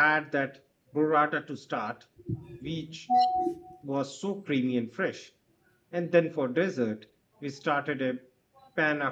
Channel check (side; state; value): both; identical; correlation 1.00